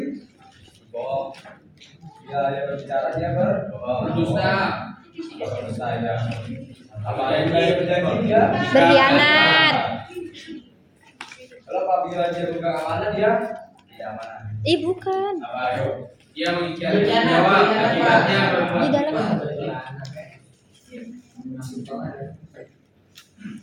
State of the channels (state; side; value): identical; both; correlation 1.00